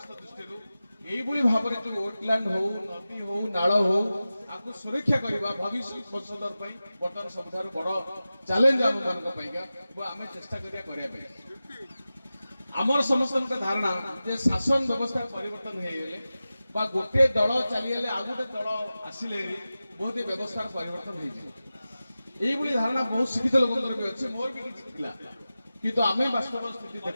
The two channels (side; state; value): both; inverted; correlation -0.95